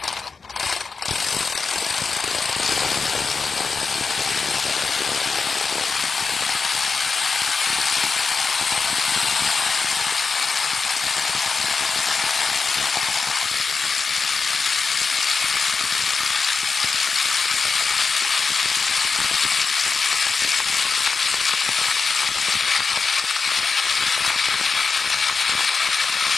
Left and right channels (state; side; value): quieter; right; 4.7 dB